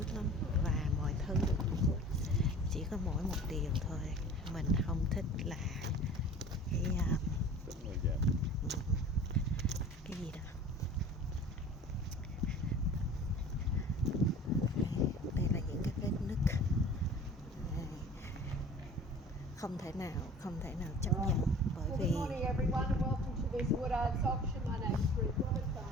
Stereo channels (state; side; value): normal; both; correlation 0.43